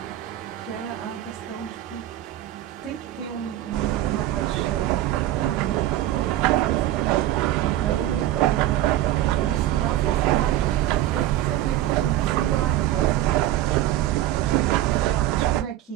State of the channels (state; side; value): quieter; left; 13.8 dB